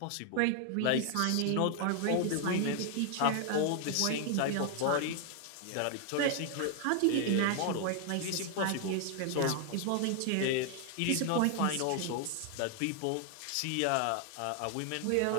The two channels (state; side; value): different; both; correlation 0.00